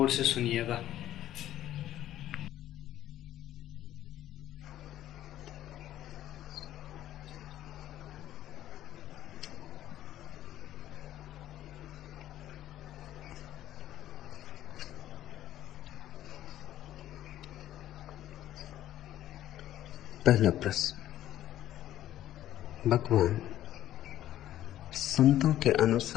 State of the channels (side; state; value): right; quieter; 12.9 dB